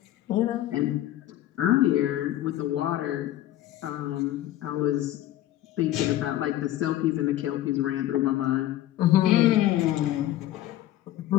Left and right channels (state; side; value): quieter; right; 13.9 dB